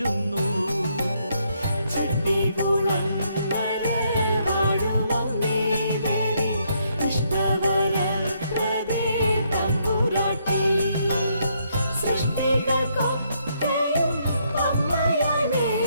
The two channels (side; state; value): both; inverted; correlation -0.73